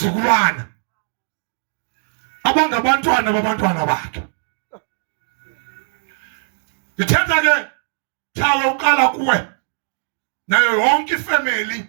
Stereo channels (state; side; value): silent; left; digital silence